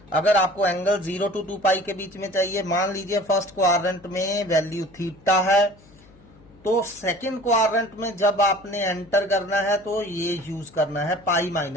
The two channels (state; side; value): noise; left; hum, 26 dB below the sound